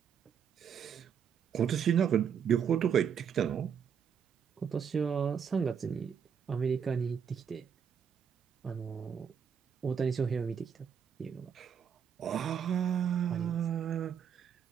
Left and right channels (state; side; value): quieter; left; 7.5 dB